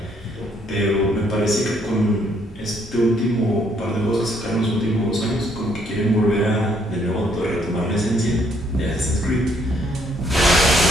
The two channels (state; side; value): normal; both; correlation 0.69